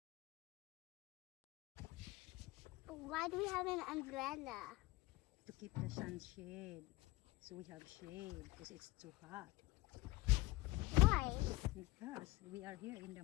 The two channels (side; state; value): right; quieter; 18.9 dB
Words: Why do we have an umbrella? To keep the sun shade. So we have shade because it's too hot. Why? Because we are here in